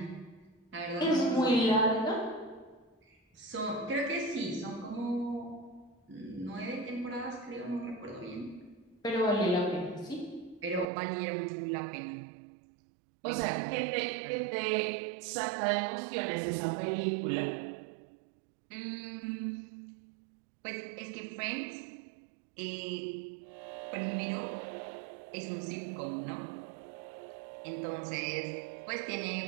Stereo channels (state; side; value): drops out; left; at 10.9 s